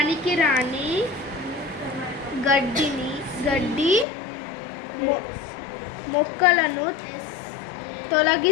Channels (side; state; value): right; drops out; at 4.0 s